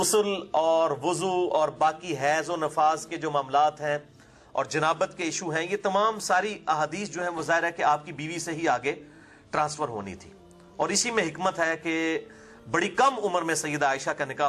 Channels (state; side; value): identical; both; correlation 1.00